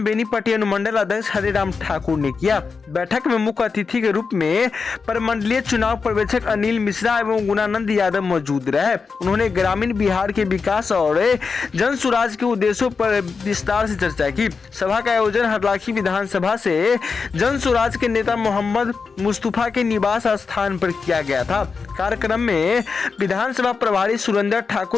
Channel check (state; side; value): quieter; right; 5.0 dB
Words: बेनीपट्टी अनुमंडल अध्यक्ष हरिराम ठाकुर ने किया। बैठक में मुख्य अतिथि के रूप में प्रमंडलीय चुनाव पर्यवेक्षक अनिल मिश्रा एवं गुणानंद यादव मौजूद रहे। उन्होंने ग्रामीण बिहार के विकास और जन स्वराज के उद्देश्यों पर विस्तार से चर्चा की। सभा का आयोजन हरलाखी विधानसभा से जन स्वराज के नेता मोहम्मद मुस्तफा के निवास स्थान पर किया गया था। कार्यक्रम में विधानसभा प्रभारी सुरेंद्र